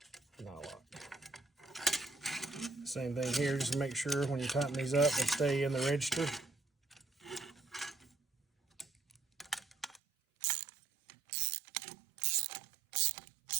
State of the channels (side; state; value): left; drops out; at 10.0 s